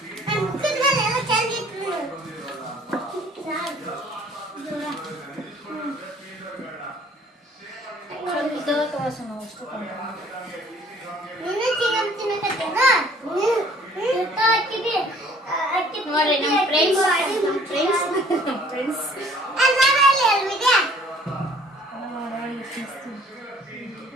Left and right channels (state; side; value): normal; both; correlation 0.55